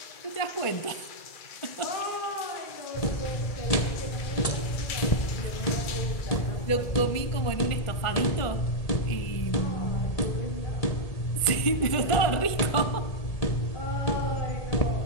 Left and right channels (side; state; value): right; late; 1.5 ms